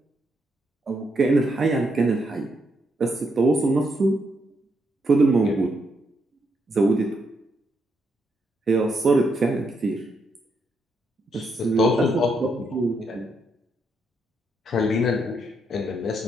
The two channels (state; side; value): normal; both; correlation 0.78